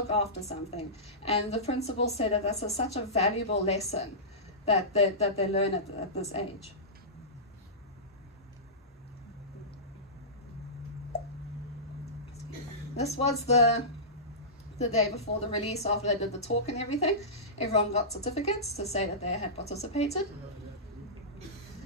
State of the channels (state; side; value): normal; both; correlation -0.19